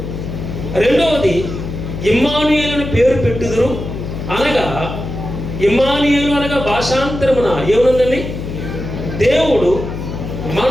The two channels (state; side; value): noise; left; hum, 7 dB below the sound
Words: రెండవది ఇమ్మానుయేలు అని పేరు పెట్టుదురు అనగా, ఇమ్మానుయేలు అనగా భాషాంతరమున ఏముందండి? దేవుడు